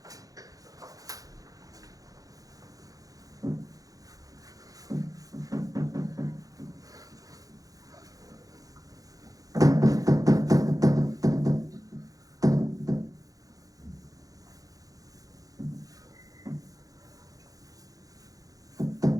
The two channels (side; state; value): left; late; 0.17 ms